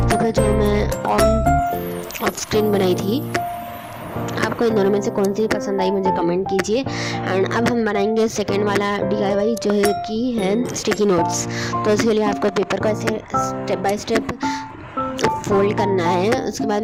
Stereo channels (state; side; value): identical; both; correlation 1.00